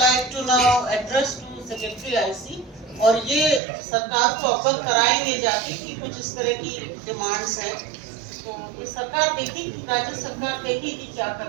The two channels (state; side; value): drops out; left; at 3.6 s